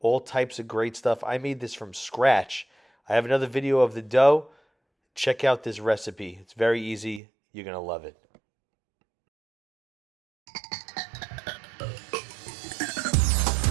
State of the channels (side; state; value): left; drops out; at 7.2 s